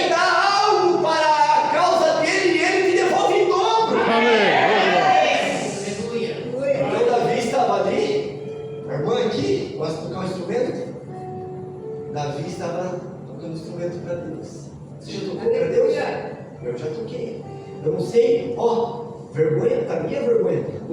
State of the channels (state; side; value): identical; both; correlation 1.00